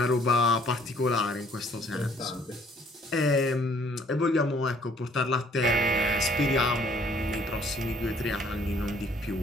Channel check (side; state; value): both; normal; correlation 0.61